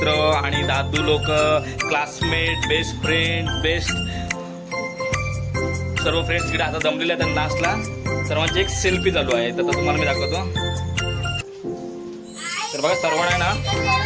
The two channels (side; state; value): both; identical; correlation 1.00